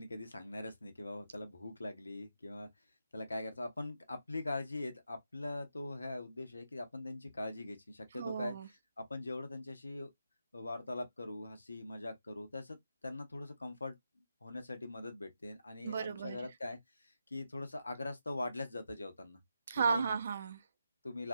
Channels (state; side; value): inverted; both; correlation -0.86